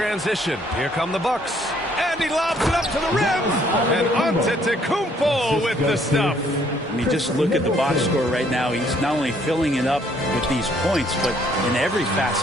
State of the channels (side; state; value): both; normal; correlation 0.65